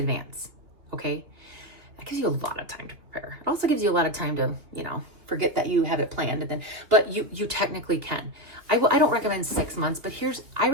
Okay, that gives you a lot of time to prepare. It also gives you a lot of time to, forget that you have it planned, and then, but you technically can. I don't recommend 6 months, but I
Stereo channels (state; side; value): late; left; 2.8 ms